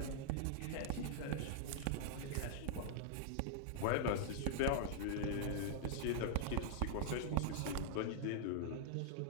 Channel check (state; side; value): different; both; correlation -0.02